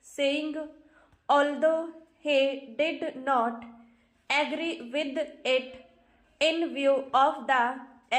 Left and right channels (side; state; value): both; identical; correlation 1.00